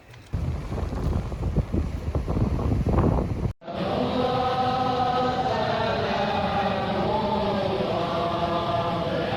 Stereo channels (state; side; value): identical; both; correlation 1.00